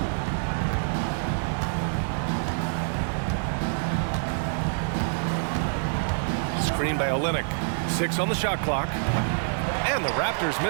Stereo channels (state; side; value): silent; left; 57 dB below the other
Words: Screen by Olynyk. 6 on the shot clock. And the Raptors